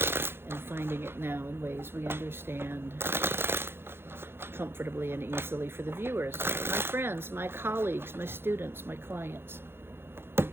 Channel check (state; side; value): late; left; 0.11 ms